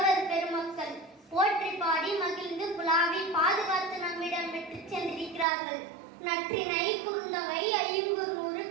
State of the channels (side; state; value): left; drops out; at 5.5 s